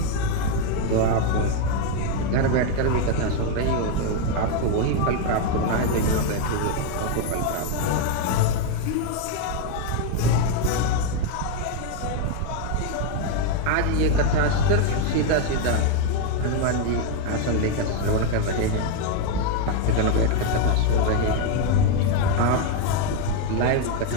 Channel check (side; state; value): both; different; correlation 0.01